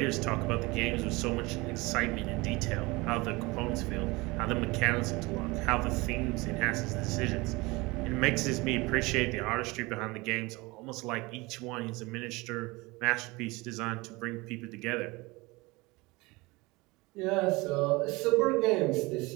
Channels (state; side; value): quieter; left; 23.5 dB